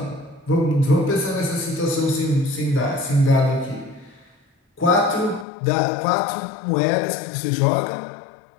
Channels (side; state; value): right; drops out; at 5.5 s